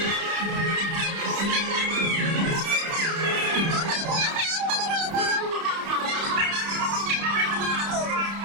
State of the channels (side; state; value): left; late; 30 ms